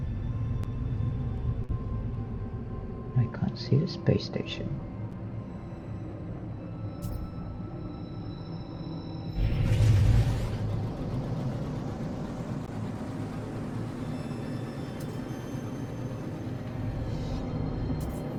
I can't see the space station.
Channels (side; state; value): both; identical; correlation 1.00